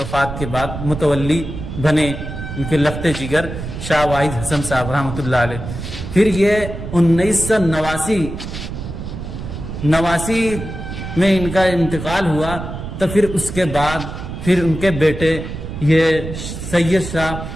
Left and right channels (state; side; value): noise; right; rumble, 8 dB below the sound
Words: के बाद मुतवल्ली बने उनके लख्ते जिगर शाह वाइद हसन साहब रहमतुल्लाह अलैह। फिर ये 1989 में इनका इंतकाल हुआ। तो फिर उसके बाद फिर उनके बेटे ये सैयद शाह